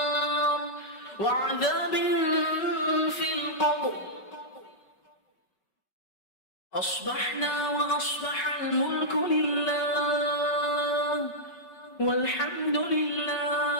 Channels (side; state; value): right; late; 5.3 ms